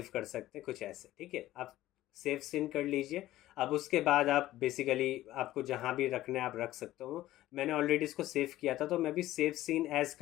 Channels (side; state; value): right; quieter; 15.1 dB